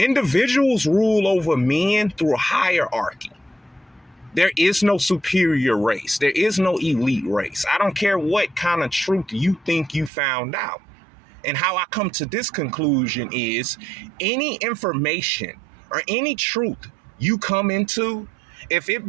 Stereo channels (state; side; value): drops out; left; at 10.1 s